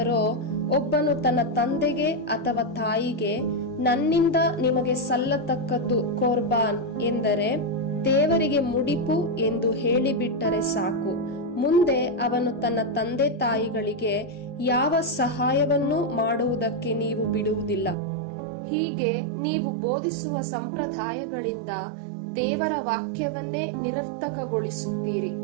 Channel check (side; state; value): left; drops out; at 17.9 s